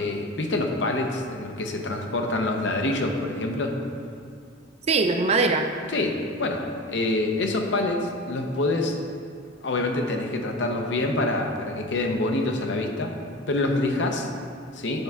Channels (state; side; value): normal; both; correlation 0.31